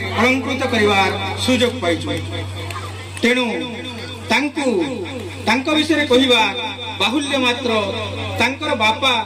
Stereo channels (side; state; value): both; identical; correlation 1.00